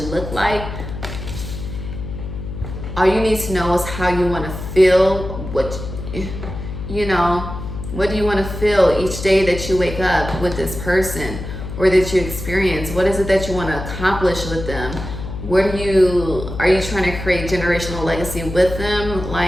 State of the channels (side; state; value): left; noise; hum, 8 dB below the sound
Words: look like. All you need to know is how you want to feel, what do you want to feel each day that you wake up with this person or that you experience. What is it that you want to accomplish with them? Are you trying to create generational legacy with them?